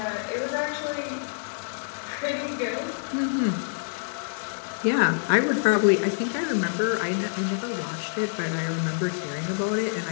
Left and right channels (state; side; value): silent; right; digital silence